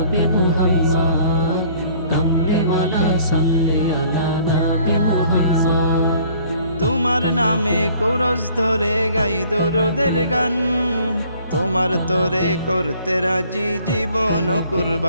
মুহাম্মদ, কমলিওয়ালা সাল্লি আলা নবী মুহাম্মদ। তোমার নামে কোরস ধরে গাই দরুদের গান, তোমার তোরে করতে রাজি জীবন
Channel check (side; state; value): both; inverted; correlation -0.56